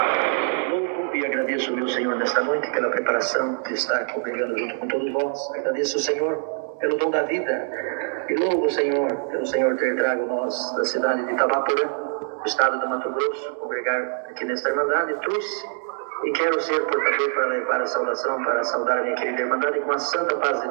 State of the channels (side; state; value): left; silent; 63 dB below the other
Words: Louvo e agradeço, meu Senhor, nesta noite pela preparação de estar congregando junto com todos vós. Agradeço o Senhor pelo dom da vida e louvo o Senhor pelo Senhor ter trago nós da cidade de Itabaporã, do estado do Mato Grosso, congregar aqui nesta Irmandade. Trouxe e quero ser portador para levar a saudação, para saudar a minha querida Irmandade com a santa paz de